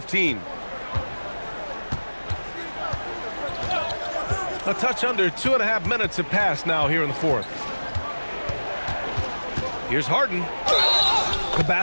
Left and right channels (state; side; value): inverted; both; correlation -1.00